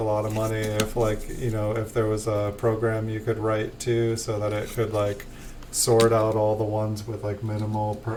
lot of money if like, if there was a program you could write to so that it could like sort out all the ones with like minimal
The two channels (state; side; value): identical; both; correlation 1.00